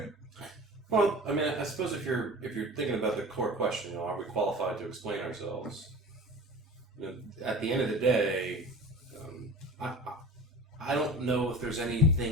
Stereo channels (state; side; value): normal; both; correlation 0.37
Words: Well, I mean, I suppose if you're thinking about the core question, are we qualified to explain ourselves? At the end of the day, I don't know if there's